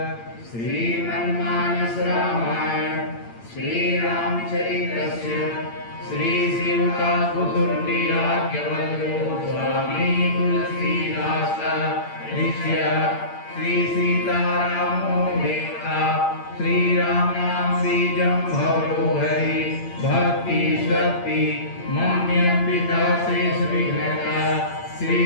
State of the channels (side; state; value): right; late; 8.8 ms